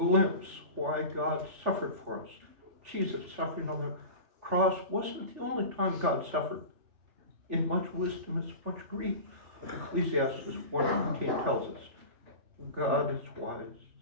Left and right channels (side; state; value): left; late; 3.4 ms